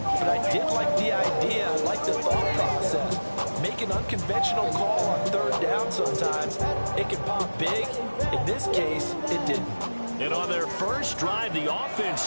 but I did like the idea big. In this case, it didn't. And on their first drive, the offense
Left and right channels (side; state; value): both; inverted; correlation -1.00